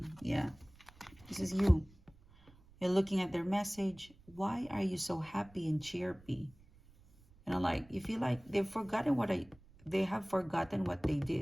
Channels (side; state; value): right; noise; rumble, 25 dB below the sound